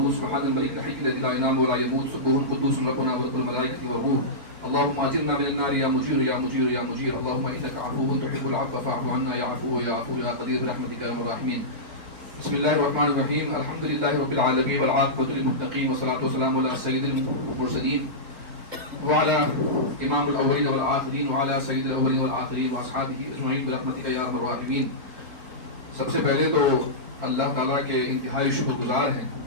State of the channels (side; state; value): left; late; 4.5 ms